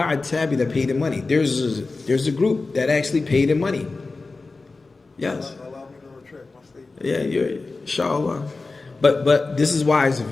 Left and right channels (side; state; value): right; quieter; 3.7 dB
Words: tabi that pay their money. There's a group that actually pay their money. Yes. Yeah, you're inshallah. But this is why it's